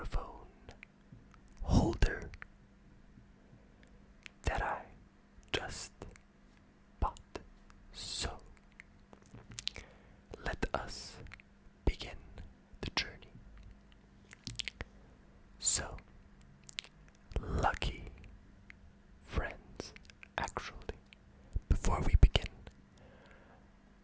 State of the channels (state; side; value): identical; both; correlation 1.00